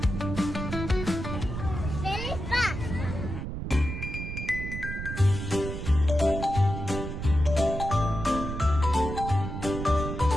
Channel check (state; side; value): noise; right; rumble, 6 dB below the sound